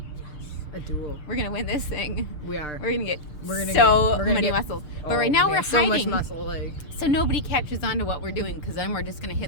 A duel. We're going to win this thing. We are. We're going to get We're gonna so get- many muscles. But right now we're so hiding. much muscle, like. So nobody catches on to what we're doing, because then we're just going to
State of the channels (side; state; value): right; late; 6.8 ms